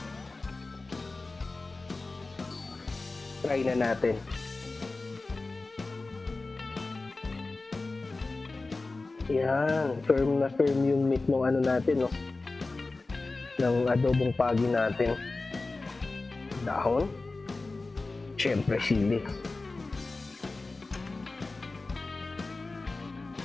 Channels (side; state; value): right; quieter; 3.5 dB